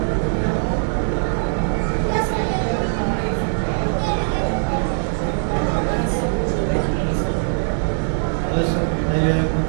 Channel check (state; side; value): silent; left; digital silence